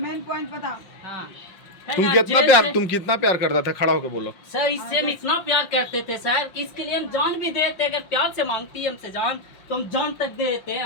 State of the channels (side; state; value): right; late; 5.7 ms